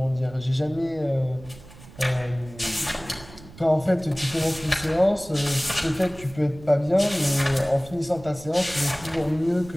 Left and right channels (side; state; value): right; noise; rumble, 19 dB below the sound